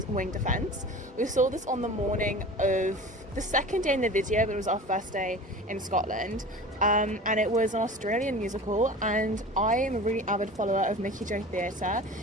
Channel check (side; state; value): both; normal; correlation 0.37